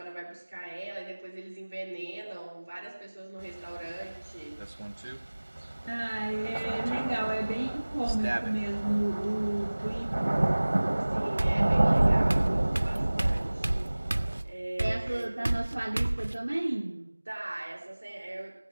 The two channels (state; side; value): inverted; both; correlation -1.00